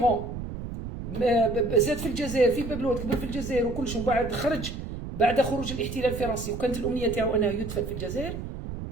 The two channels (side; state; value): right; noise; rumble, 8 dB below the sound